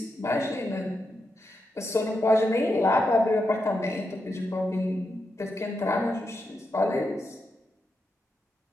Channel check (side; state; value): both; normal; correlation 0.85